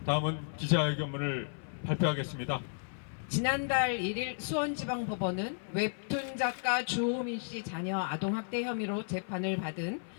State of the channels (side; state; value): right; silent; 55 dB below the other